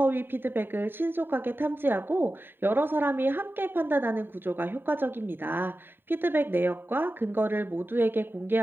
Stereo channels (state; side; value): late; left; 0.098 ms